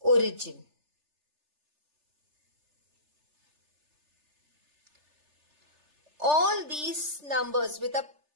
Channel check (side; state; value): left; late; 3.3 ms